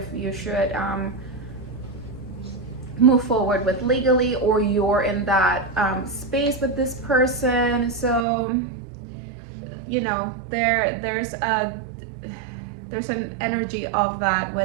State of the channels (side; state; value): left; drops out; at 8.2 s